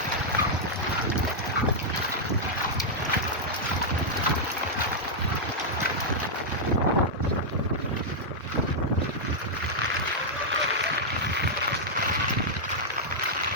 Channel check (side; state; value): both; normal; correlation -0.06